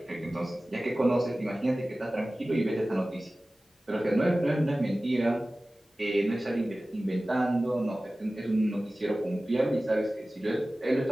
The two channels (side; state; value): both; normal; correlation 0.97